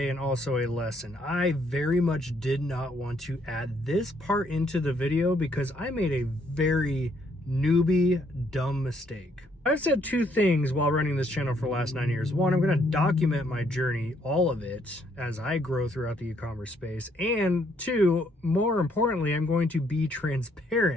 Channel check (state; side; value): normal; both; correlation 0.70